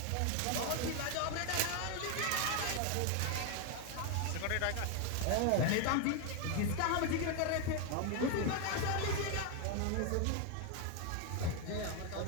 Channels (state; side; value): different; both; correlation 0.01